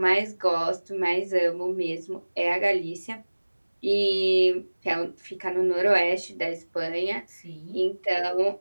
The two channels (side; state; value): both; inverted; correlation -1.00